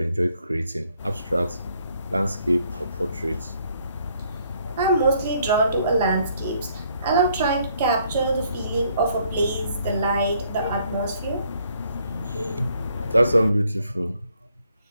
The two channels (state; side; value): inverted; both; correlation -0.68